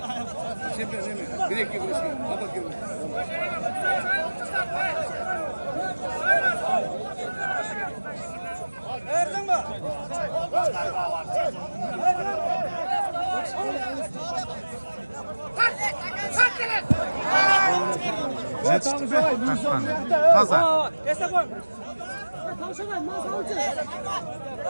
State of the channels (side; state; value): both; inverted; correlation -1.00